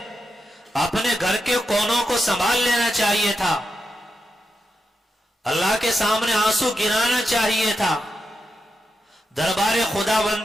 اپنے گھر کے کونوں کو سنبھال لینا چاہیے تھا، اللہ کے سامنے آنسو گرانا چاہیے تھا، دربار خدا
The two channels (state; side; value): normal; both; correlation 0.86